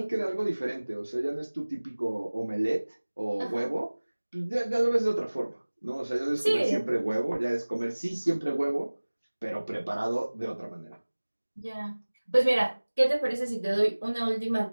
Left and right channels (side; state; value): both; inverted; correlation -1.00